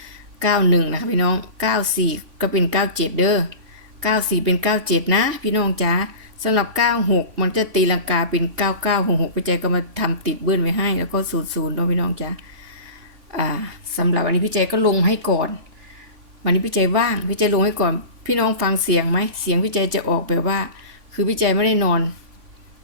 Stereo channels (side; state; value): left; late; 3.5 ms